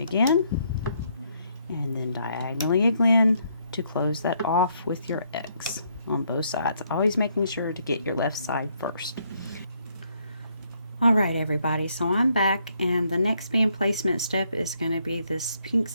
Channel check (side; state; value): both; inverted; correlation -0.72